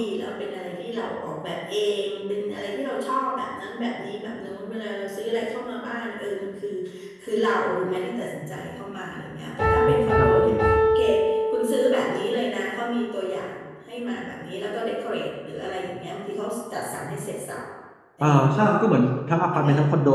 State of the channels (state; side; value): identical; both; correlation 1.00